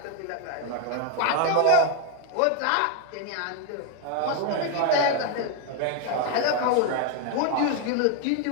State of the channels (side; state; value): both; different; correlation 0.00